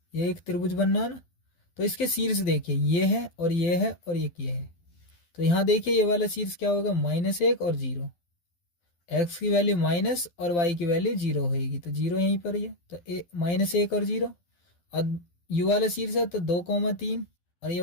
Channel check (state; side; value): late; right; 12 ms